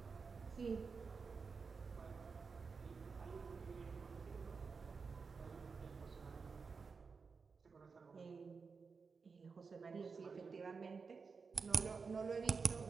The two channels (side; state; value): left; quieter; 5.0 dB